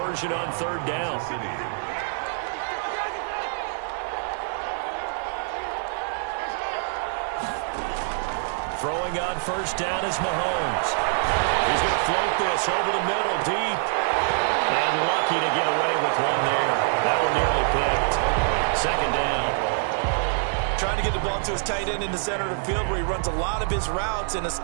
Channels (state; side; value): silent; left; digital silence